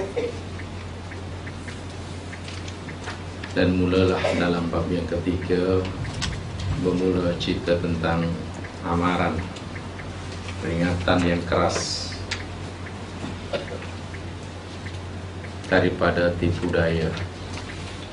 Dan mulalah dalam bab yang ketiga bermula cerita tentang amaran, peringatan yang keras daripada tipu daya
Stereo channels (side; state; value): both; identical; correlation 1.00